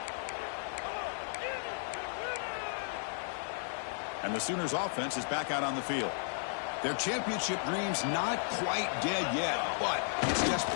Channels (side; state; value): right; silent; digital silence